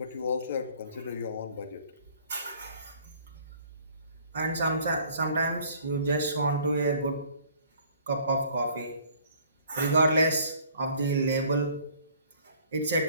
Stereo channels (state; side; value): inverted; both; correlation -0.56